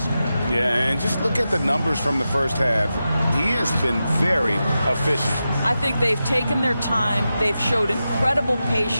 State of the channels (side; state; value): both; inverted; correlation -0.91